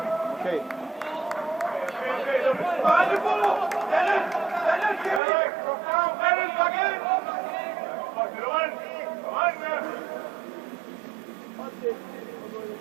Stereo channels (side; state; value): left; drops out; at 5.2 s